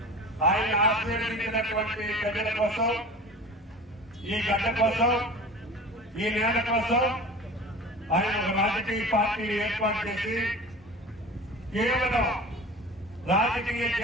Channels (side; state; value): both; normal; correlation 0.37